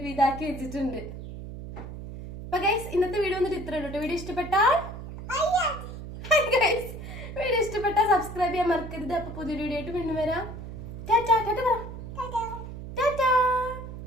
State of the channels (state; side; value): noise; right; hum, 10 dB below the sound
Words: വിധാക്കി വെച്ചിട്ടുണ്ട്. അപ്പൊ ഗൈസ് ഇന്നത്തെ വീഡിയോ വന്നിട്ട് ഇത്രേ ഉള്ളൂ. വീഡിയോ ഇഷ്ടപ്പെട്ടാൽ സബ്സ്ക്രൈബ് ചെയ്യാൻ മറക്കരുത്. അപ്പൊ പുതിയൊരു വീഡിയോ ആയിട്ട് വീണ്ടും വരാം. ടാറ്റാ പറ.